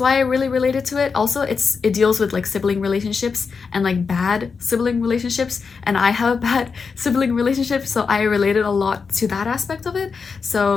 I really related to it. Also, it deals with like sibling relationships and like bad sibling relationships, and I have a bad sibling relationship, so I related a lot to that aspect of it.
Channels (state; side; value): quieter; right; 5.3 dB